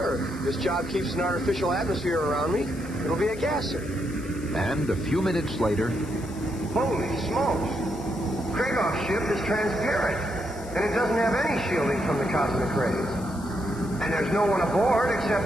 This job keeps an artificial atmosphere around me. It'll be a gasser. And a few minutes later... Holy smokes! Kragoff's ship is transparent, and it doesn't have any shielding from the cosmic rays. And there's no one aboard except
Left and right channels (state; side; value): noise; left; hiss, 19 dB below the sound